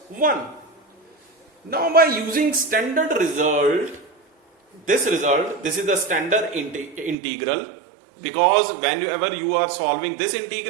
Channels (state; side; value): drops out; left; at 7.2 s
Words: 1. Now by using standard result, this is the standard integral, because whenever you are solving this